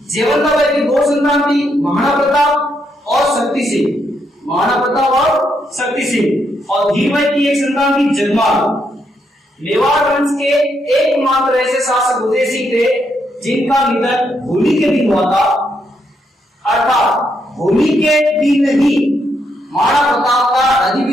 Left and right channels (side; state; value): both; normal; correlation 0.78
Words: जेवंताबाई की दो संतान थी, महाराणा प्रताप और शक्ति सिंह। महाराणा प्रताप और शक्ति सिंह। और धीरबाई की एक संतान थी जगमाल। मेवाड़ वंश के एकमात्र ऐसे शासक उदय सिंह थे जिनका निधन होली के दिन हुआ था। अर्थात होली के दिन ही महाराणा प्रताप का